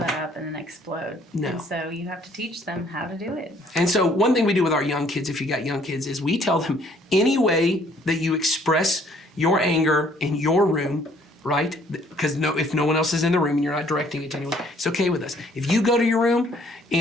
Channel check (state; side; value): normal; both; correlation 0.62